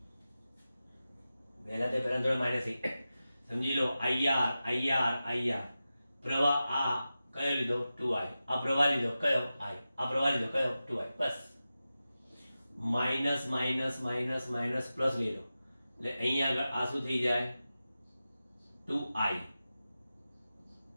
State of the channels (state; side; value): inverted; both; correlation -0.93